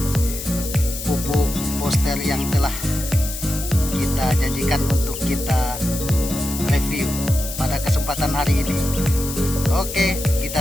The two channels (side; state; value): left; noise; hiss, 8 dB below the sound